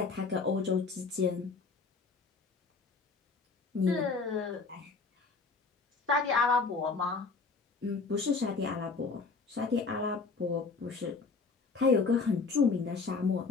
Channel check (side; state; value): right; quieter; 4.4 dB